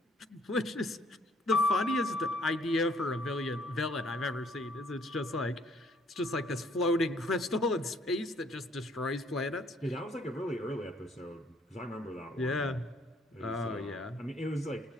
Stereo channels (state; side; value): normal; both; correlation 0.63